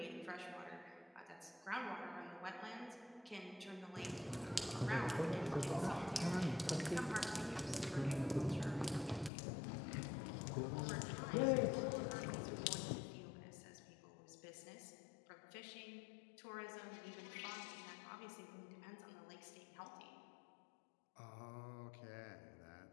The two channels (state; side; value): drops out; right; at 9.3 s